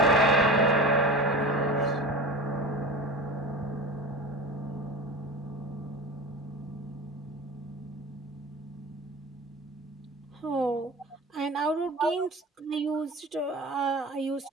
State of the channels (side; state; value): both; normal; correlation 0.32